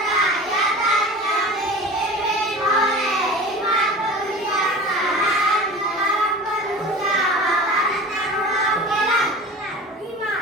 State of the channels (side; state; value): both; normal; correlation 0.36